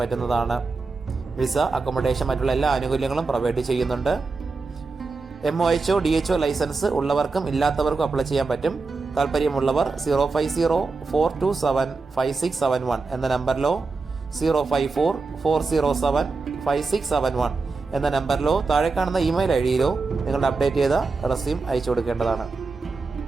പറ്റുന്നതാണ്. വിസ, അക്കോമഡേഷൻ മറ്റുള്ള എല്ലാ ആനുകൂല്യങ്ങളും പ്രൊവൈഡ് ചെയ്യുന്നുണ്ട്. MOHO DHO ലൈസൻസ് ഉള്ളവർക്കും ഇല്ലാത്തവർക്കും അപ്ലൈ ചെയ്യാൻ പറ്റും. താല്പര്യമുള്ളവർ 050-427-5671 എന്ന നമ്പറിലോ 054-407-5671 എന്ന നമ്പറിലോ താഴെ കാണുന്ന ഇമെയിൽ ഐഡിയിലോ നിങ്ങളുടെ അപ്ഡേറ്റ് ചെയ്ത റെസ്യൂം അയച്ചു കൊടുക്കേണ്ടതാണ്.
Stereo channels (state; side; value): quieter; left; 4.0 dB